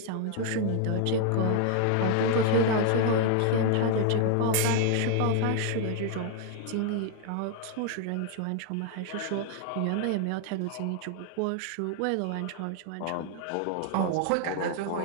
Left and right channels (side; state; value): both; different; correlation 0.00